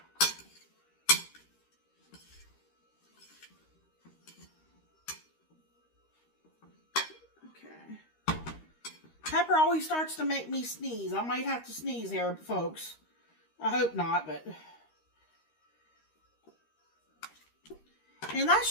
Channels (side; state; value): right; late; 13 ms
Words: Okay. Pepper always starts to make me sneeze. I might have to sneeze here, folks. I hope not, but... And